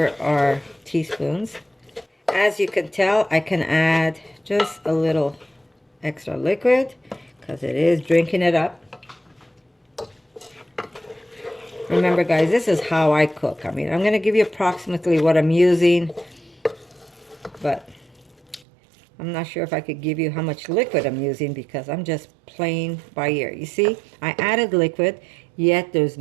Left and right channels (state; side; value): drops out; left; at 18.7 s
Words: are teaspoons. As you can tell, I can add just a little extra liquid because it is drinking it up. Remember, guys, this is how I cook. I mean, I'm going to give you approximately what I'm using, but I'm not sure if I could give you how much liquid I'm using because I'm just playing by ear. You see, I added liquid, yet there's